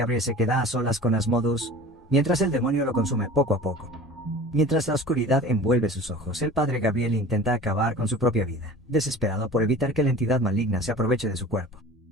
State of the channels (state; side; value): normal; both; correlation 0.40